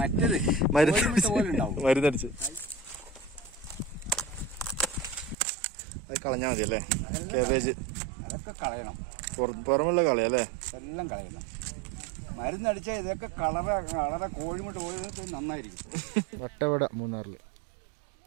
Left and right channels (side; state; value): left; drops out; at 5.4 s